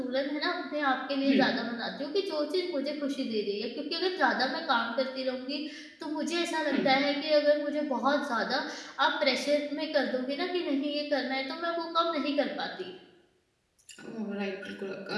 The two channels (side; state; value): both; identical; correlation 1.00